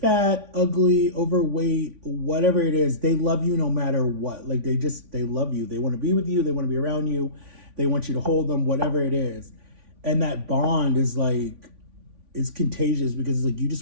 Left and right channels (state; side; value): late; left; 3.5 ms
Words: ugly, overweight, whatever it is, they love you no matter what. Like they love you. They want to be with you, they want to be around you, they want you to hold them, whatever it is. And that bond is like, it's contagious because it's like you